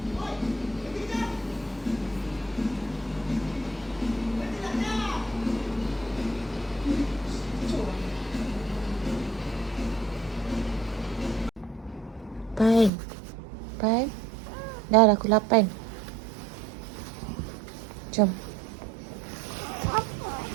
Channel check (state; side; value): drops out; left; at 12.9 s